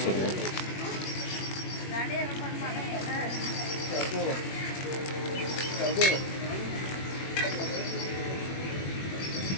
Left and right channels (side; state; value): right; late; 21 ms